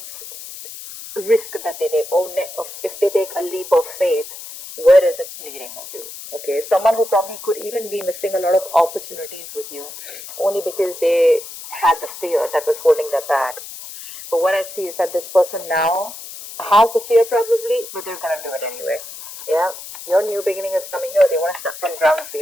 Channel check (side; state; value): left; noise; hiss, 13 dB below the sound